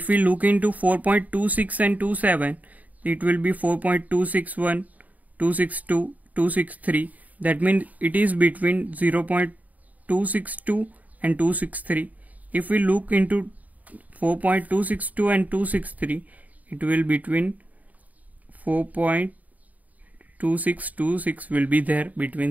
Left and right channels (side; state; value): left; late; 0.075 ms